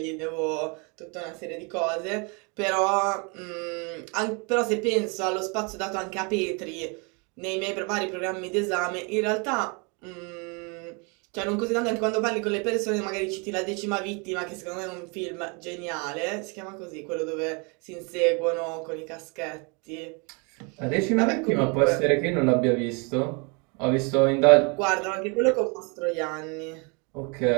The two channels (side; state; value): left; quieter; 32.2 dB